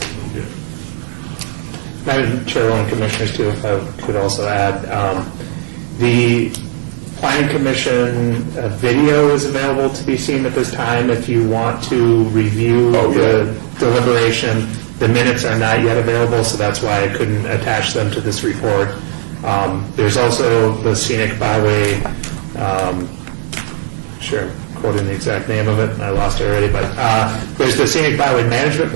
Madam Chairwoman, Commissioners, too, if I could also add, the Planning Commission video is available to be seen at this time if you want to review the deliberation. The minutes are not yet available, so that's why I couldn't attach them to this report. There's also the Scenic Byway, quoting the exact name of it, and I lost it already, but there's the Scenic Byway Management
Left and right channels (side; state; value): left; silent; digital silence